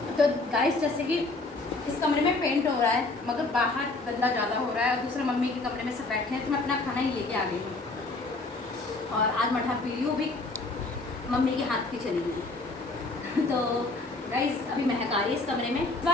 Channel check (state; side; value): quieter; right; 3.3 dB